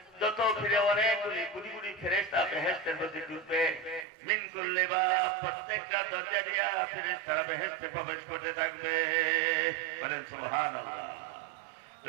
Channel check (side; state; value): left; drops out; at 4.0 s